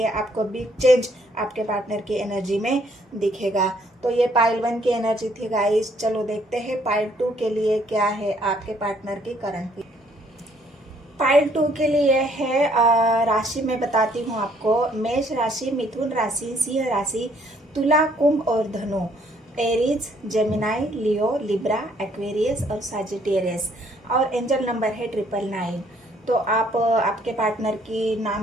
आपको बिग चेंज आपके पार्टनर की एनर्जी में दिखेगा। तो ये पाइल 1 की एनर्जी थी गाइस। चलो देखते हैं पाइल 2 के लिए क्या है आपके पार्टनर की करंट। पाइल 2 के लिए है राशि मैं बताती हूँ आपको। मेष राशि, मिथुन राशि, सिंह राशि, तुला, कुंभ और धनु, एरीज, जेमिनाई, लियो, लिब्रा, एक्वेरियस और सजिटेरियस, और एंजल नंबर है 999। तो आप आपके पार्टनर की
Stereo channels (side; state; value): both; normal; correlation 0.65